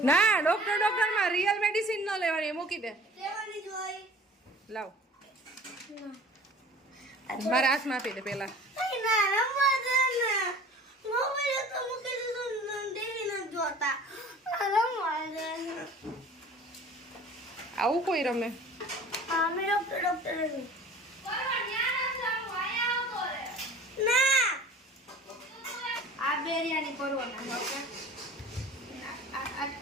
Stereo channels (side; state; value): both; normal; correlation 0.45